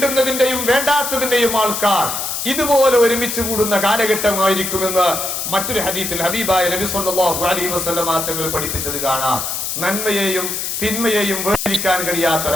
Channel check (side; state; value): left; noise; hiss, 3 dB below the sound